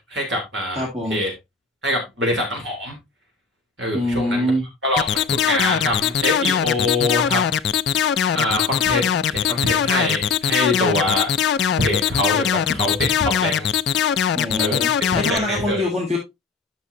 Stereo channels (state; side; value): quieter; right; 4.5 dB